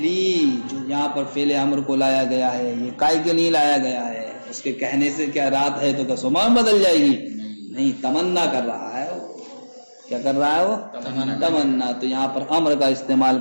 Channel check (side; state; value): both; inverted; correlation -1.00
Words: جو یہاں پر فعل امر کو لایا گیا ہے، یہ کائے کے نہیں لایا گیا ہے؟ اس کے کہنے سے کیا رات ہے تو کیا صبح بدل جائے گی؟ نہیں، تمنا کر رہا ہے وہ. کیا کر رہا ہے وہ؟ تمنا. تو یہاں پر امر کا استعمال